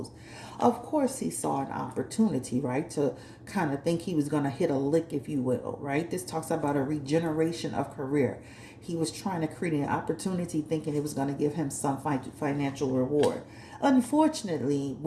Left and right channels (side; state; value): both; identical; correlation 1.00